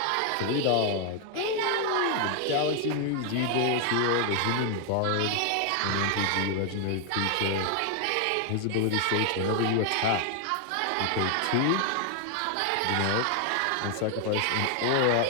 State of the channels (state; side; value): different; both; correlation 0.00